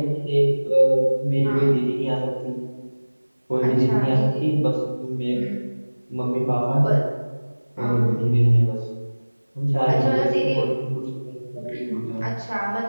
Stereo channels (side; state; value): both; inverted; correlation -1.00